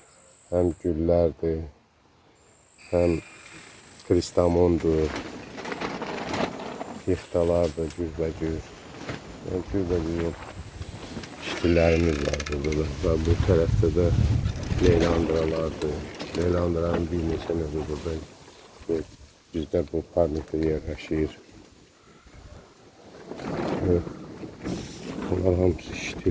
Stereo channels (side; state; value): both; identical; correlation 1.00